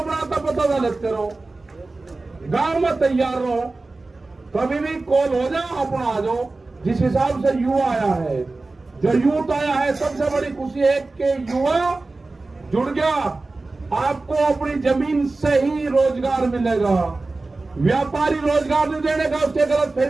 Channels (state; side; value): quieter; left; 3.4 dB